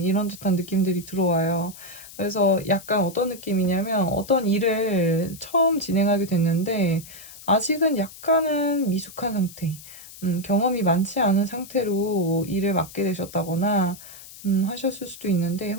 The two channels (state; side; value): noise; left; hiss, 17 dB below the sound